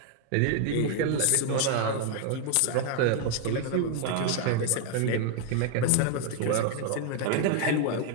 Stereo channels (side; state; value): both; different; correlation 0.00